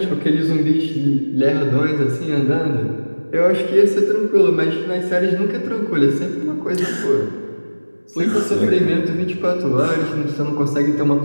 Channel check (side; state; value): both; inverted; correlation -1.00